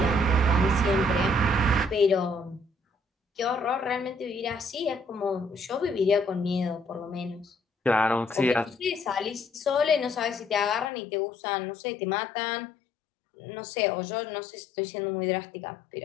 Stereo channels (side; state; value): right; drops out; at 10.9 s